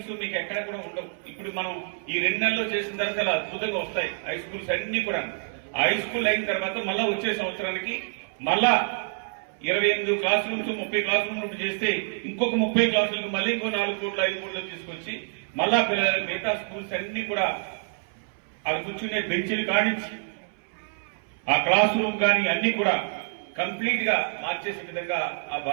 మీకు ఎక్కడ కూడా ఉండవు. ఇప్పుడు మనం ఈ 2 నెలల్లో చేసిన తర్వాత చాలా అద్భుతంగా వస్తాయి హై స్కూల్స్ అన్ని కూడా. హై స్కూల్ అయిన తర్వాత మళ్ళా వచ్చే సంవత్సరానికి మళ్ళా 28 క్లాస్ రూమ్స్ 30 క్లాస్ రూమ్స్ చేస్తే ఇంకొక 30 క్లాసులకు మళ్ళీ ఇంకో 4 కోట్లు 5 కోట్లు తీసుకొచ్చి మళ్ళా పిల్లలు మిగతా స్కూల్స్ అన్ని కూడా అవి కూర్చునే బెంచీలు కానించి ఆ క్లాస్ రూమ్ కానీ అన్ని కూడా కంప్లీట్ గా మార్చేసే విధంగా ఆ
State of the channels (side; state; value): left; silent; 59 dB below the other